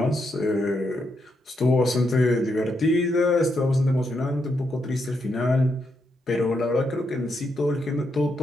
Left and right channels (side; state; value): both; normal; correlation 0.80